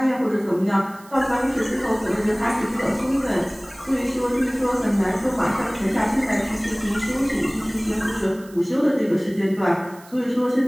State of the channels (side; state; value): right; noise; hiss, 24 dB below the sound